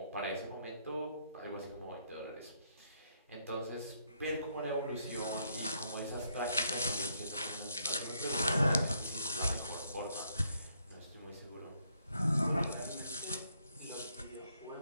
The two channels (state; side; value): inverted; both; correlation -0.73